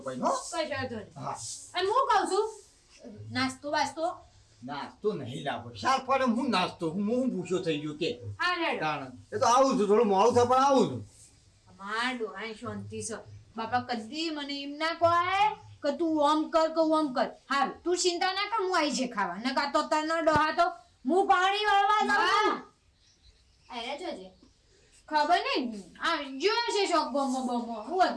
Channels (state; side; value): identical; both; correlation 1.00